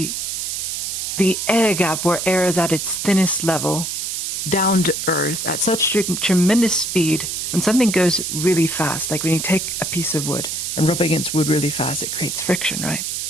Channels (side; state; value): right; noise; hiss, 3 dB below the sound